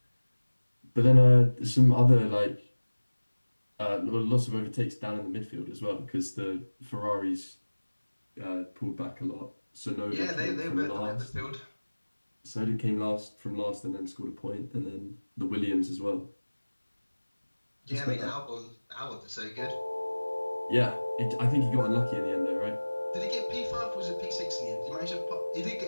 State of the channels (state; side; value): inverted; both; correlation -1.00